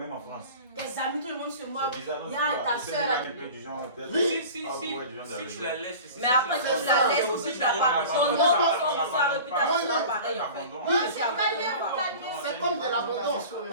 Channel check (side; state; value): both; inverted; correlation -0.38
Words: en France. Tes amis, tout le monde se moque. C'est bizarre, il y a ta soeur. Si tu la laisses. Mais après, si tu la laisses aussi, tu la pas. Son nom, sa réputation, c'est pareil en fait. Oui, c'est comme de l'abondance. C'est